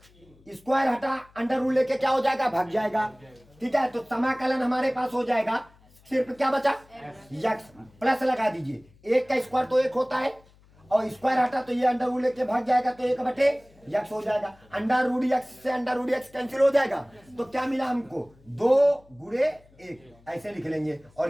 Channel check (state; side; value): noise; left; hum, 29 dB below the sound